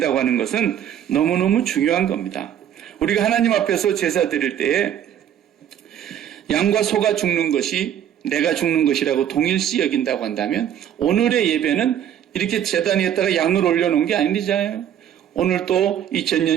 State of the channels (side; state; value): left; quieter; 10.0 dB